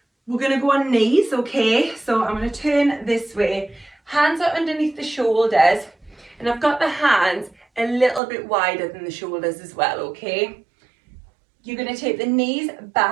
we're gonna go on knees, okay? So I'm gonna turn this way. Hands are underneath the shoulders, and I've got the hands a little bit wider than the shoulders as well, okay? You're gonna take the knees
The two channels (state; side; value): drops out; left; at 8.2 s